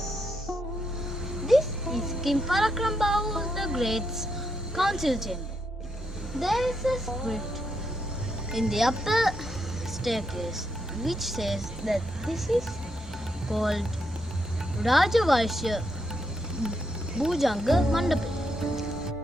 King Parakrambahu the Great's council chamber. There is a script in the upper staircase which says that this is called Rajavaishya Bhujanga Mandapa.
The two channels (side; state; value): both; normal; correlation 0.80